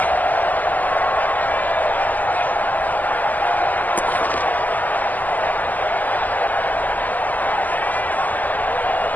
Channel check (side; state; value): right; late; 0.082 ms